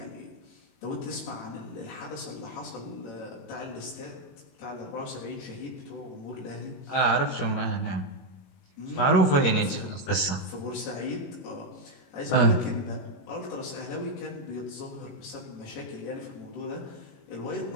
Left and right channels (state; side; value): late; right; 22 ms